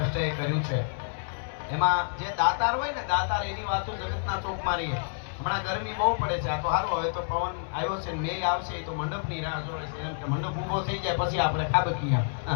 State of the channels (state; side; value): silent; right; 59 dB below the other